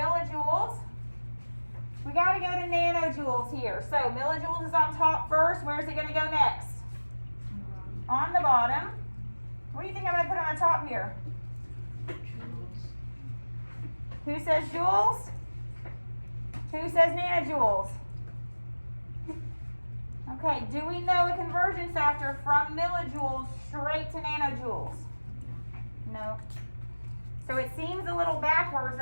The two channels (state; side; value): inverted; both; correlation -1.00